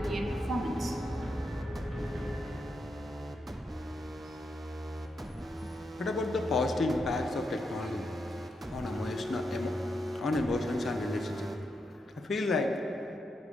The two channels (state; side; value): normal; both; correlation 0.83